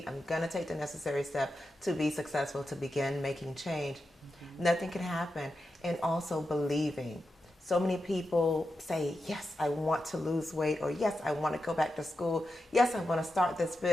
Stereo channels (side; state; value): both; normal; correlation 0.89